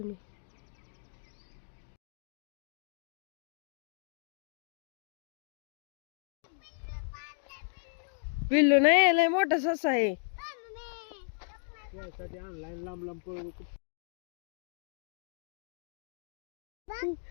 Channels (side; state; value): right; silent; 55 dB below the other